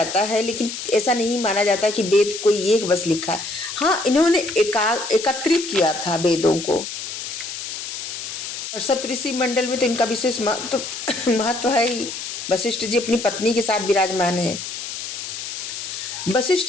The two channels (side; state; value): left; noise; hiss, 7 dB below the sound